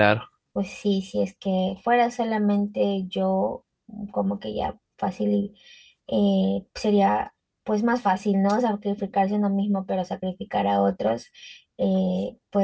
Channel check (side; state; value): both; identical; correlation 1.00